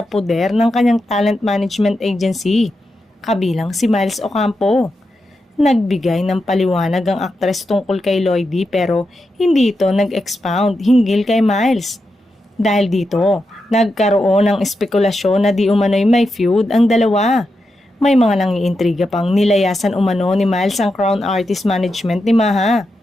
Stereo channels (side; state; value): both; normal; correlation 0.87